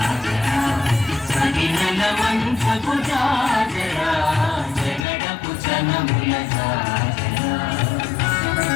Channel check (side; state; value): right; drops out; at 5.1 s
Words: సడినల మంచపు జాజరా జగడపు చనవుల జాజరా